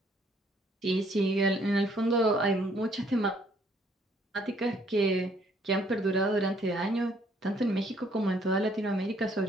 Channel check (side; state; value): both; normal; correlation 0.65